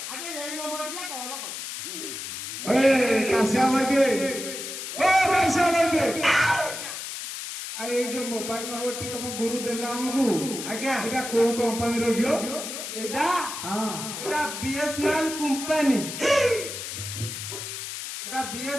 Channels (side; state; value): left; noise; hiss, 7 dB below the sound